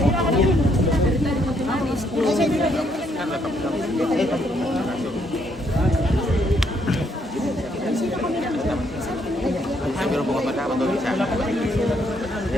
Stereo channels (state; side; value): normal; both; correlation 0.72